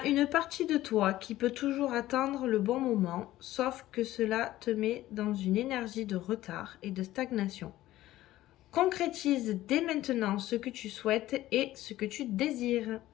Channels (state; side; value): quieter; right; 15.3 dB